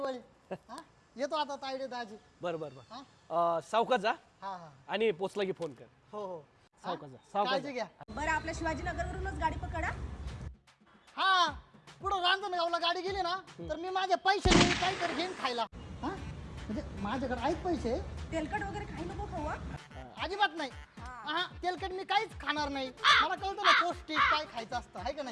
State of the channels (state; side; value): identical; both; correlation 1.00